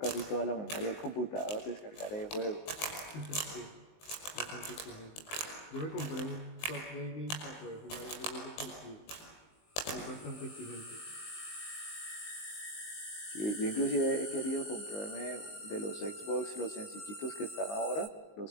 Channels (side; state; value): right; late; 19 ms